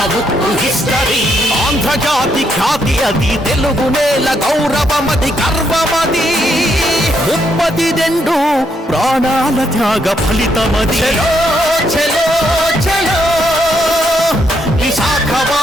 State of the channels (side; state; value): both; normal; correlation 0.76